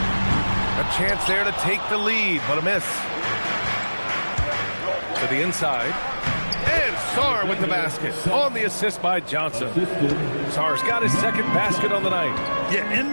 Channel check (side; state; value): both; inverted; correlation -1.00